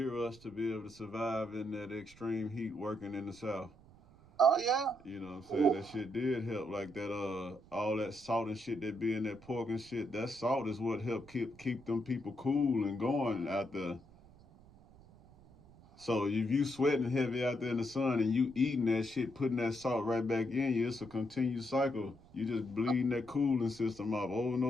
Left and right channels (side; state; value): right; noise; rumble, 24 dB below the sound